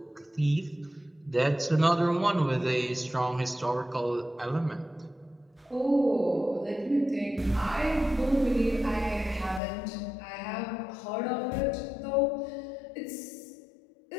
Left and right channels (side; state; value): right; drops out; at 9.6 s